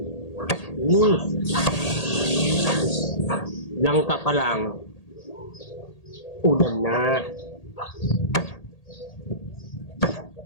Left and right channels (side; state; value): right; late; 1.8 ms